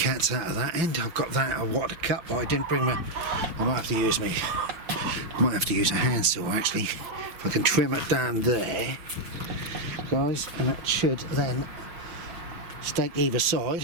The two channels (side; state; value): left; late; 5.6 ms